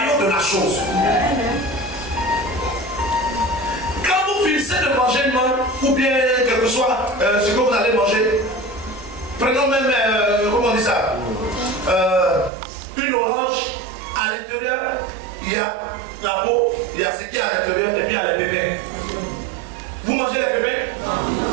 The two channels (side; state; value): left; drops out; at 12.5 s